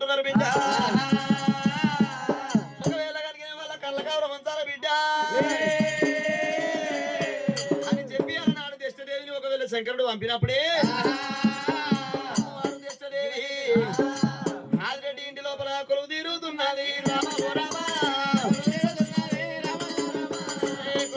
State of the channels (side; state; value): both; identical; correlation 1.00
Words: బిడ్డ ఒకవేళ కనుక వాళ్ళ కళ్ళ కవరం అంతారా బిడ్డ అని చెప్పి అన్నాడు దృష్టదేవిని ఒకవేళ శంకరుడు పంపినప్పుడే ఆదిరెడ్డి ఇంటి లోపల కొలువు తీరుతున్నది రామ ఓ రామ